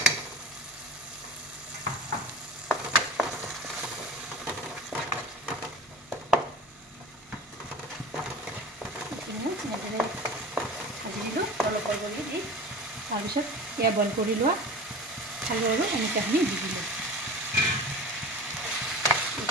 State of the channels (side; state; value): both; normal; correlation 0.35